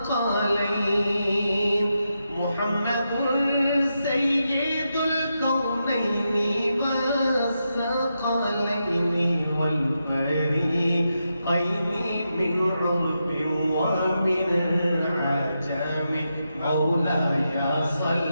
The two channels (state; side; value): inverted; both; correlation -0.86